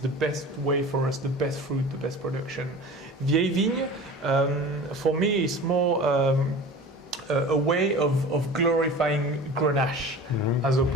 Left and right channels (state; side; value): normal; both; correlation 0.38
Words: the best way for us, the best fruit, the best production. Vieille Vigne, for me, is more a way of glorifying Grenache, as